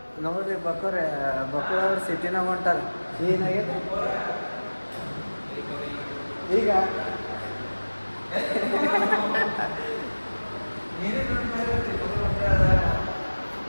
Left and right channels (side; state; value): both; inverted; correlation -1.00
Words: ನೋಡ್ರಿ ಬಕ್ಕಳವ್ರು ಸಿಟಿನಾಗ ಹೊಂಟಾರ. ಏನಾಗೈತೆ ಈಗ?